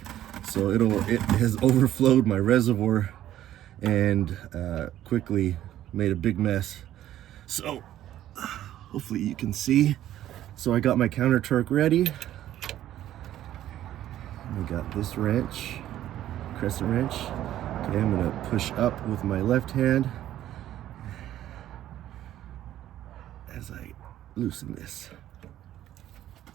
So it has overflowed my reservoir and quickly made a big mess. So hopefully you can see. So I got my counter torque ready. I got this wrench, crescent wrench. Okay, I'm gonna push up with my left hand as I loosen this.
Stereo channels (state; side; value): quieter; left; 12.6 dB